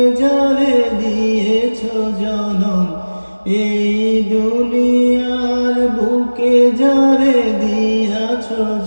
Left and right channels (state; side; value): inverted; both; correlation -1.00